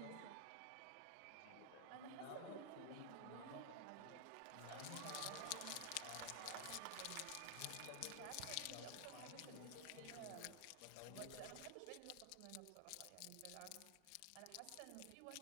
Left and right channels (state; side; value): different; both; correlation 0.00